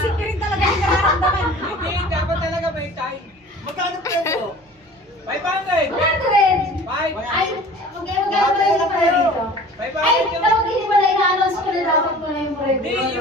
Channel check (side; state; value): both; normal; correlation 0.44